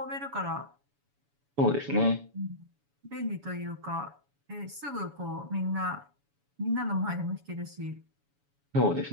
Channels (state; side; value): late; left; 7.1 ms